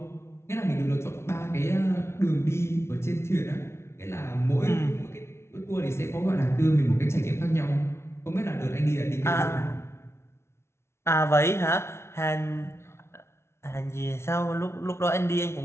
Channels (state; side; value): late; right; 0.13 ms